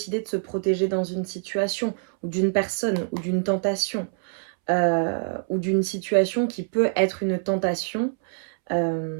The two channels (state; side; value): silent; left; 62 dB below the other